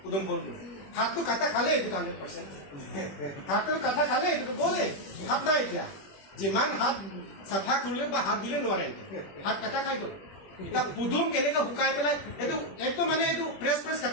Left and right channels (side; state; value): right; late; 21 ms